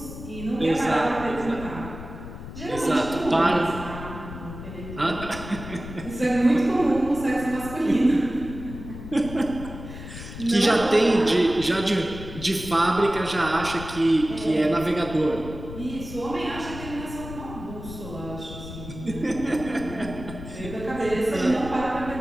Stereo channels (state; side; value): noise; left; rumble, 11 dB below the sound